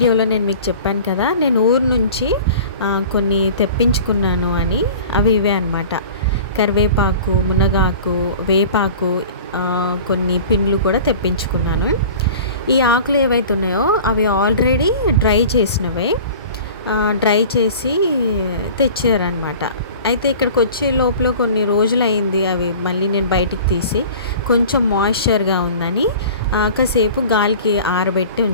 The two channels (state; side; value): inverted; both; correlation -0.41